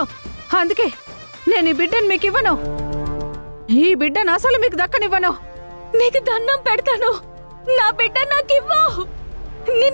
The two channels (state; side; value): inverted; both; correlation -1.00